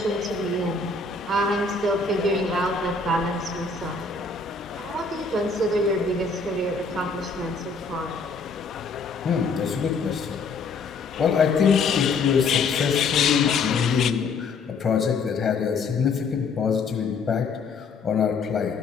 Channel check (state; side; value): quieter; right; 4.4 dB